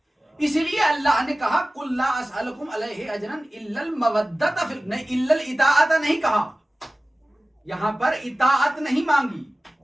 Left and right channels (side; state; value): both; normal; correlation 0.97